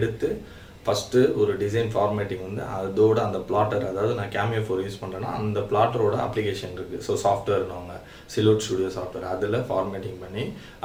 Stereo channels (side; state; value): both; identical; correlation 1.00